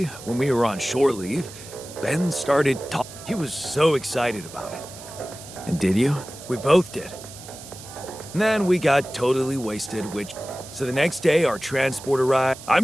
when we were on shore leave, Ben started talking. He was so excited about it. And did you? We both did. And then we got totally wasted, So the next day, our transport arrived.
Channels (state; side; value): noise; right; hiss, 16 dB below the sound